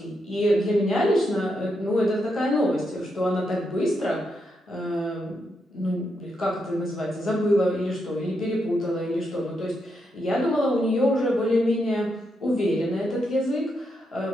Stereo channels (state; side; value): normal; both; correlation 0.82